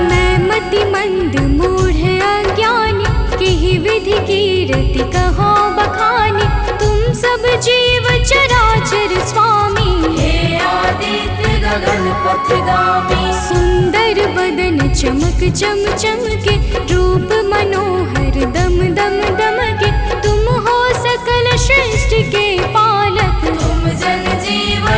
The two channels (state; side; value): identical; both; correlation 1.00